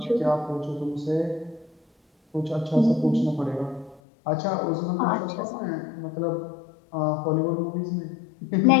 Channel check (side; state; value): right; drops out; at 4.0 s